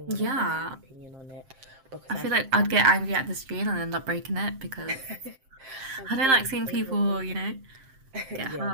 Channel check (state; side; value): late; left; 7.6 ms